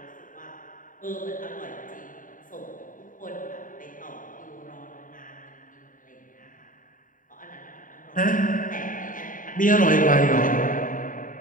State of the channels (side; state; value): right; late; 0.39 ms